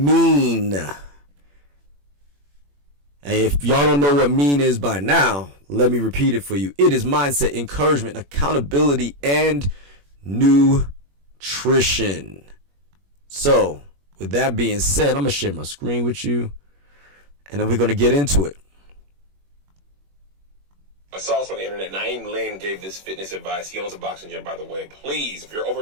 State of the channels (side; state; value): left; late; 21 ms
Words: And if y'all don't know what mean is by now, let me repeat it for you. It is mindset, encouragement, accountability, and nutrition. So, with that being said, I'm going to share my screen with you, and then we're going to get into it. I saw this on the internet. Naeem Lynn gave this fitness advice. He owns a boxing gym, by the way. Please, if you're